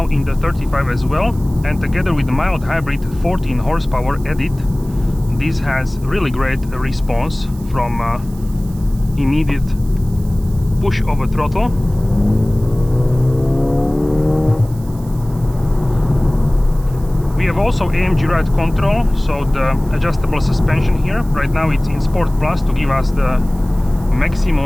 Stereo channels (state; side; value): noise; right; hiss, 23 dB below the sound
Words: in the 35 as well. And together with the mild hybrid 14 horsepower edit, this has really great response from immediate push of a throttle. We have also AMG ride control, so the adjustable suspension here. Right now it's in Sport Plus to give us the